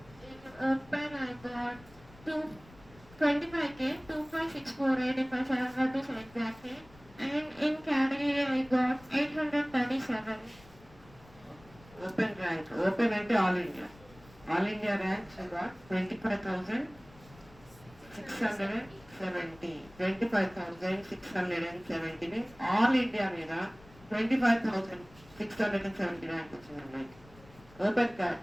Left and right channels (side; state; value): left; noise; rumble, 23 dB below the sound